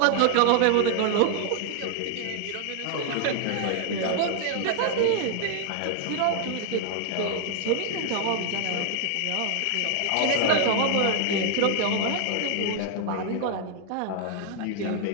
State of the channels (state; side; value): different; both; correlation 0.00